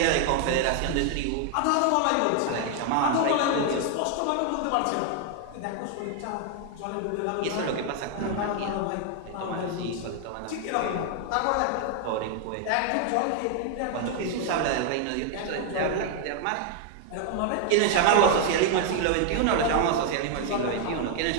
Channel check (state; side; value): different; both; correlation 0.00